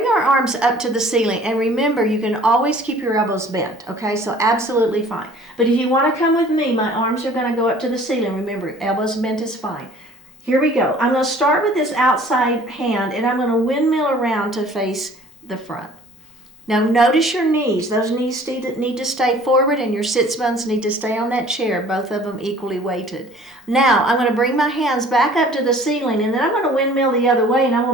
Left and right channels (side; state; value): both; normal; correlation 0.51